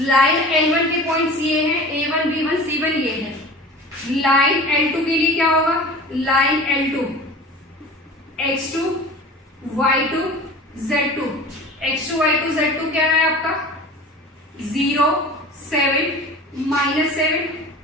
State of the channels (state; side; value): normal; both; correlation 0.38